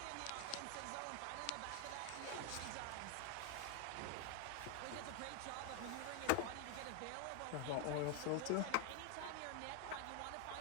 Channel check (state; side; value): different; both; correlation 0.00